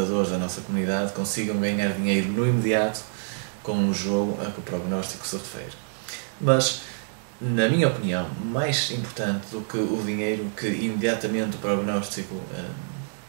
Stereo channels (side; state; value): left; silent; digital silence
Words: da nossa comunidade consigam ganhar dinheiro no imediato com o jogo a que o prognóstico se refere. Mas, na minha opinião, mais importante do que o dinheiro que imediatamente o prognóstico